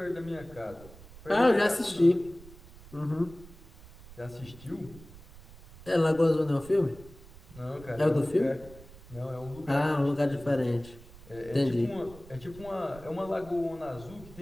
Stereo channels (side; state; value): right; noise; rumble, 20 dB below the sound